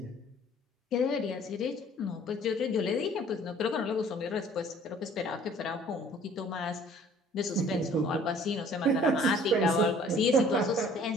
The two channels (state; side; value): normal; both; correlation 0.54